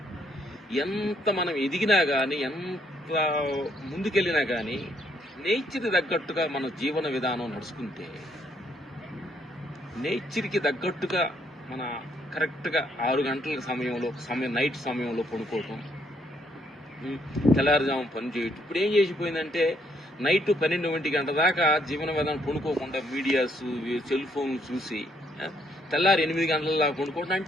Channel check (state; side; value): normal; both; correlation 0.71